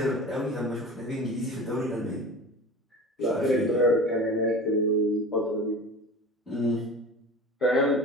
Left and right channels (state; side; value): normal; both; correlation 0.36